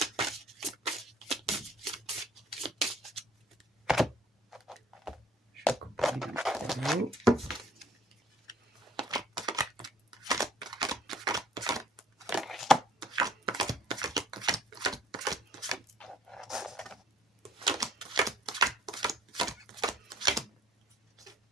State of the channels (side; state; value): both; normal; correlation 0.57